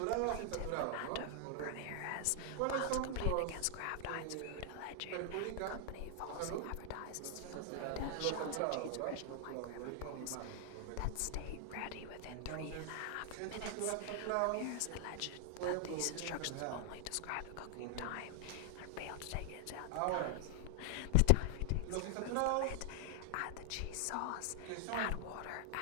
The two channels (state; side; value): different; both; correlation 0.00